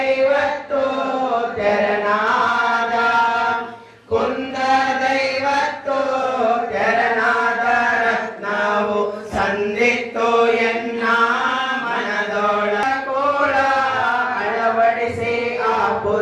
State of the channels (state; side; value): identical; both; correlation 1.00